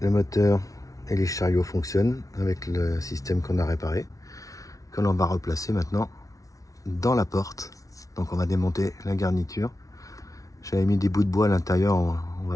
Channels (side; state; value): right; late; 0.17 ms